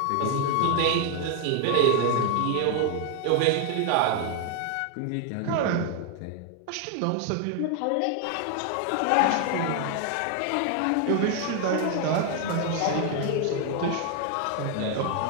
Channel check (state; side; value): different; both; correlation 0.00